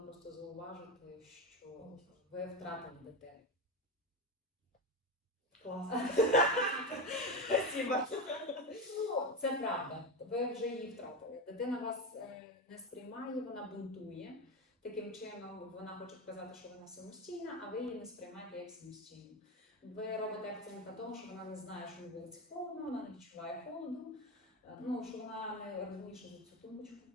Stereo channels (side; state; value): both; normal; correlation 0.17